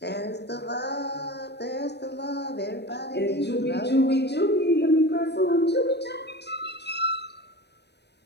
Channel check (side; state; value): right; late; 0.49 ms